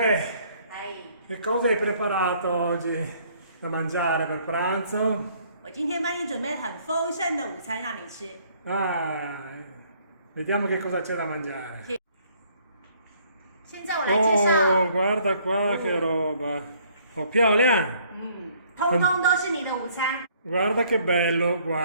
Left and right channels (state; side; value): inverted; both; correlation -0.62